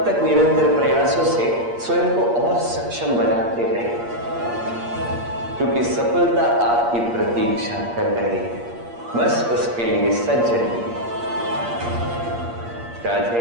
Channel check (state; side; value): late; left; 8.5 ms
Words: तक निरंतर प्रयासों से स्वयं को और सक्षम बनाते रहें, क्योंकि सफलता आपकी प्रतीक्षा कर रही है। बस उसके लिए सज्ज रहिए।